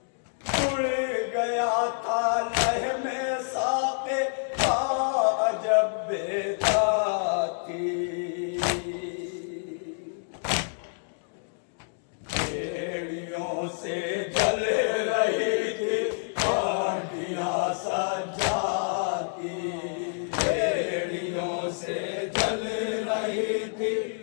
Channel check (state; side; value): silent; right; digital silence